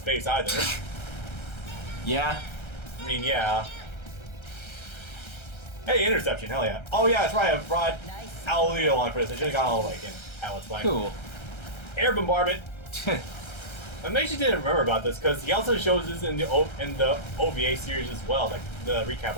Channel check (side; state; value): right; late; 1.3 ms